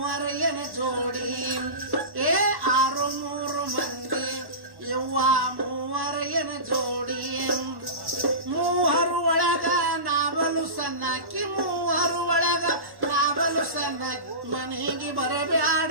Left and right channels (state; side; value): late; left; 1.1 ms